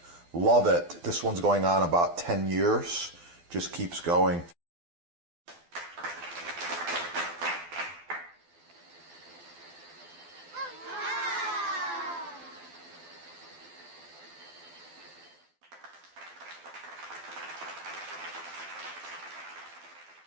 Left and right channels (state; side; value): late; left; 12 ms